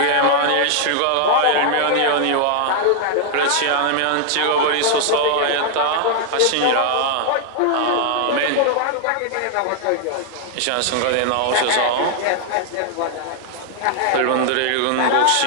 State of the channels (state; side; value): different; both; correlation 0.00